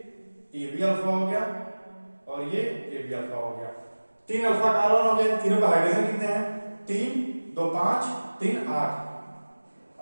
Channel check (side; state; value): both; inverted; correlation -1.00